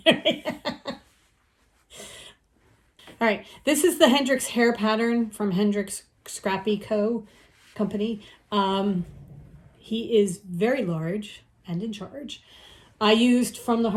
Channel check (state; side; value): identical; both; correlation 1.00